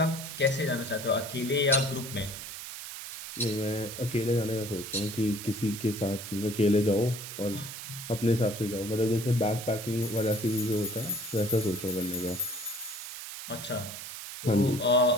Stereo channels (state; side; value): noise; right; hiss, 9 dB below the sound